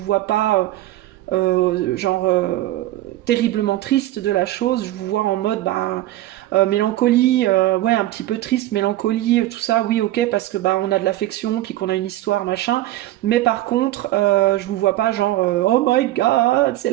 vois pas terriblement triste de la chose, je vous vois en mode mélancolie, ouais, un petit peu triste, mélancolie, tout ça, oui, ok, parce que on a de l'affection, puis qu'on a une histoire, machin, mais par contre, je vous vois pas genre oh my god, c'est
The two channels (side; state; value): left; quieter; 15.5 dB